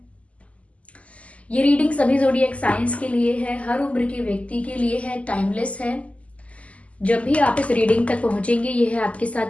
ये रीडिंग सभी ज़ोडिएक साइंस के लिए है, हर उम्र के व्यक्ति के लिए है, टाइमलेस है। जब भी आप इस रीडिंग तक पहुंचेंगे यह आपके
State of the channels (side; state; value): right; late; 0.066 ms